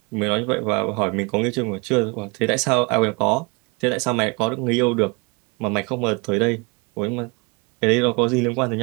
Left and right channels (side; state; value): left; quieter; 28.8 dB